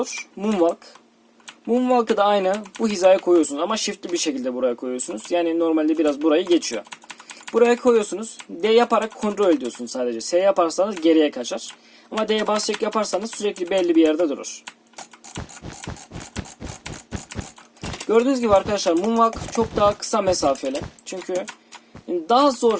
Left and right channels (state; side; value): identical; both; correlation 1.00